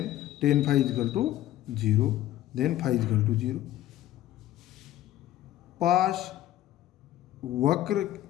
tan phi is equal to 0, then phi is equal to 0। पास वक्र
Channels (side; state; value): right; quieter; 13.7 dB